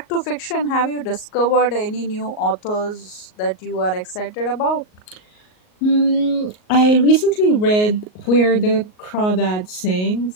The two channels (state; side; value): late; right; 38 ms